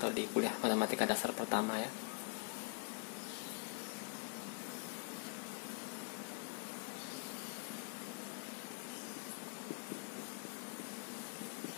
di kuliah matematika dasar pertama ya.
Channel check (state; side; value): quieter; right; 38.6 dB